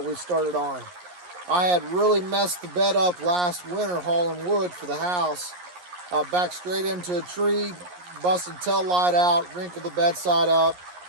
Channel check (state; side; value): late; left; 11 ms